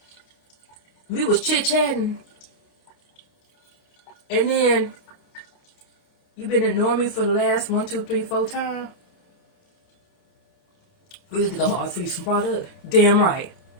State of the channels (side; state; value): right; late; 29 ms